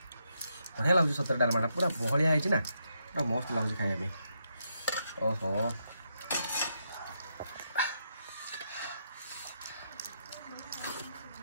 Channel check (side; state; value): both; inverted; correlation -0.80